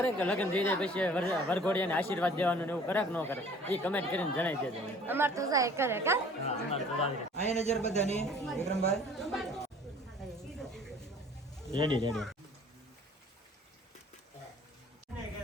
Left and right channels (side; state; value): both; normal; correlation 0.51